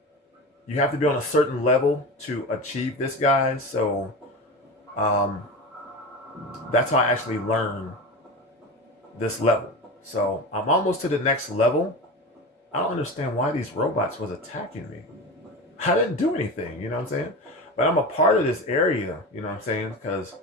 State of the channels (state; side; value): normal; both; correlation 0.27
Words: you have to be on a certain level to achieve this, guys. So that's how I actually learned this level. So I'm almost to the next level. I don't understand why these robots was attacking me. I didn't do anything, you know what I'm saying? But I'm a part of this area, you know what I'm saying? Because